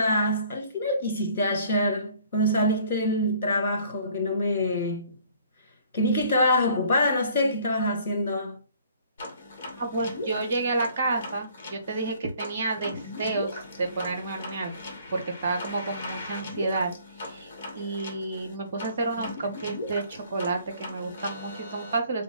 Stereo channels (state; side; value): inverted; both; correlation -0.56